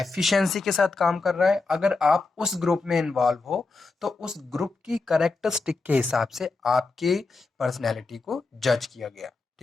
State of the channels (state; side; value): quieter; right; 3.8 dB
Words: के साथ काम कर रहा है, अगर आप उस ग्रुप में इन्वॉल्व हो तो उस ग्रुप की कैरेक्टरिस्टिक के हिसाब से आपके पर्सनैलिटी को जज किया गया।